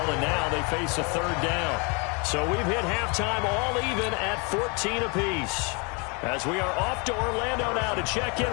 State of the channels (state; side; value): quieter; right; 32.0 dB